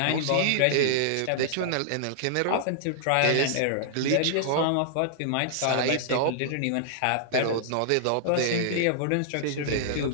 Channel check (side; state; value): both; different; correlation -0.01